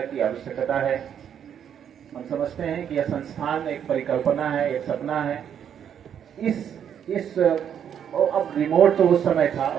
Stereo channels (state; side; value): quieter; left; 8.8 dB